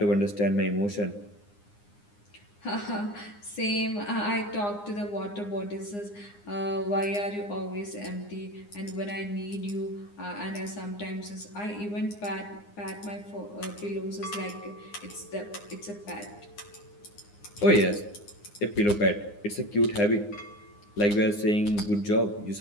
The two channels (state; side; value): late; right; 9.7 ms